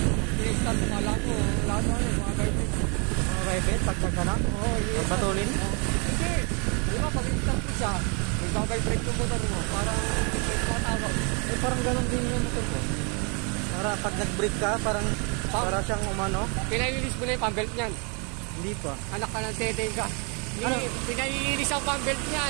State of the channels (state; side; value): quieter; left; 34.2 dB